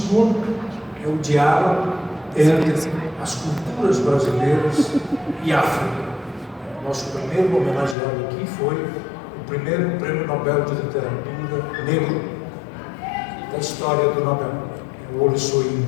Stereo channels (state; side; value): drops out; right; at 8.0 s